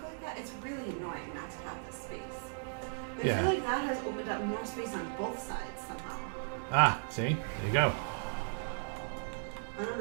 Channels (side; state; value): left; silent; digital silence